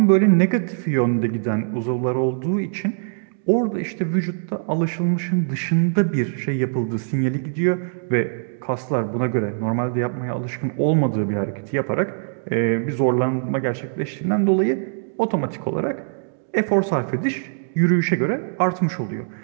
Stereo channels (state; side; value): silent; left; digital silence